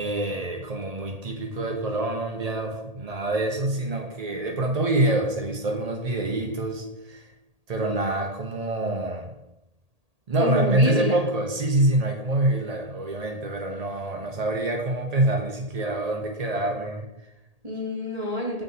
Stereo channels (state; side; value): late; left; 1.8 ms